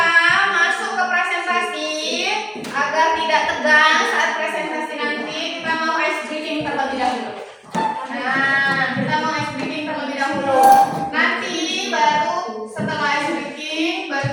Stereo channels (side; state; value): both; identical; correlation 1.00